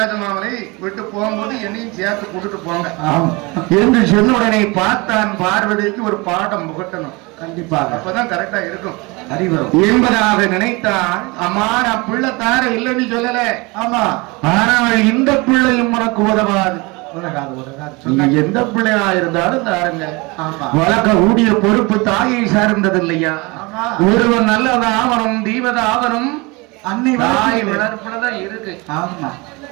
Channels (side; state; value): left; quieter; 25.8 dB